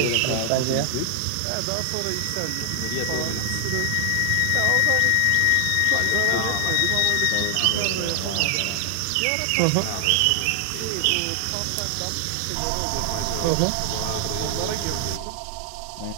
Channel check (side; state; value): both; different; correlation 0.00